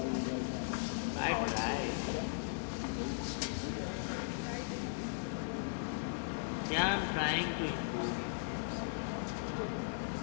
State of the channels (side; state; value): right; silent; 53 dB below the other